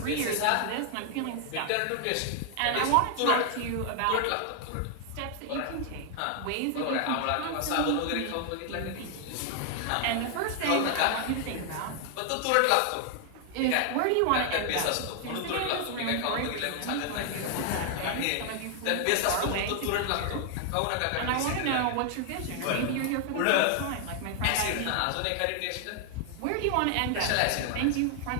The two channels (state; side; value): different; both; correlation 0.00